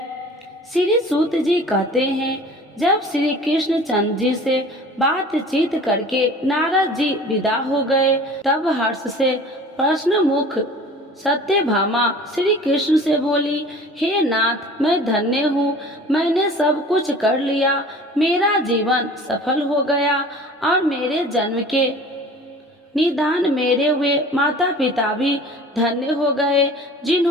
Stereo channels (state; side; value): normal; both; correlation 0.44